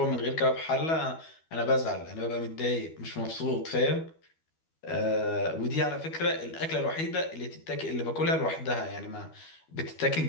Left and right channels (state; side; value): late; right; 12 ms